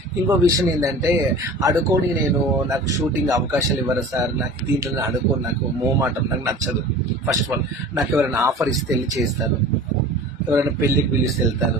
ఇంకో విషయం ఏంటంటే, అడుకొని నాకు షూటింగ్ అవకాశాలు ఇవ్వరు సార్, నాకు దీంట్లో అడుకోని, నాకు మోమాటం, నాకు నచ్చదు. ఫస్ట్ ఆఫ్ ఆల్ నాకు ఎవరైనా ఆఫర్ ఇస్తే వెళ్ళి చేస్తాను, ఎవరైనా పెళ్ళికి పిలిస్తే వెళ్తాను,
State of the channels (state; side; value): normal; both; correlation 0.40